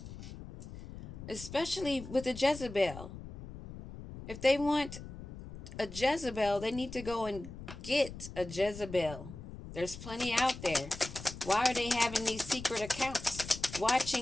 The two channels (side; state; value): left; noise; rumble, 12 dB below the sound